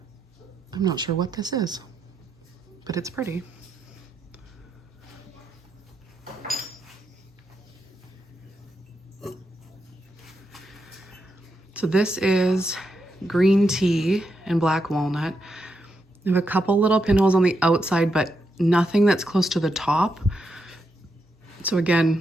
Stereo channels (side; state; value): both; normal; correlation 0.83